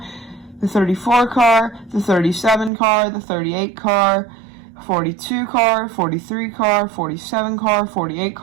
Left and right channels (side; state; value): left; drops out; at 2.7 s